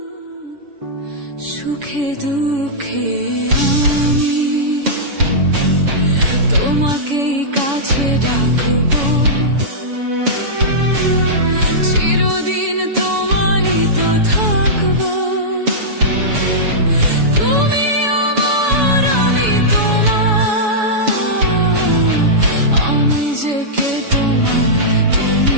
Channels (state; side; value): late; left; 7.1 ms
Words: সুখে দুঃখে আমি তোমাকেই কাছে ডাকবো। চিরদিন তোমারই তো থাকবো। তুমি আমার, আমি তোমার, আমি যে কে তোমার,